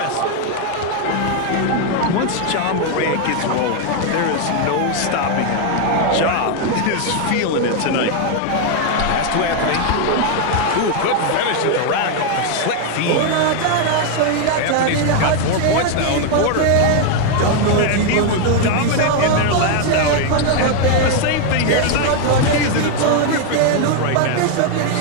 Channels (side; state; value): both; different; correlation 0.00